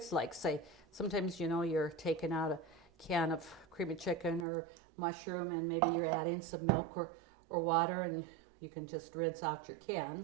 like say sometimes you're taking out a can of cream of chicken or mushroom and maybe you're adding some milk or water, and you can just rinse out your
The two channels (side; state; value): left; drops out; at 4.5 s